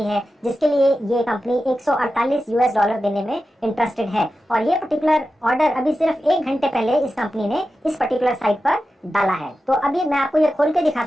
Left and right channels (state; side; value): normal; both; correlation 0.92